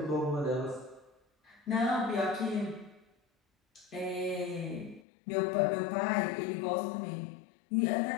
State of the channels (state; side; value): drops out; right; at 5.0 s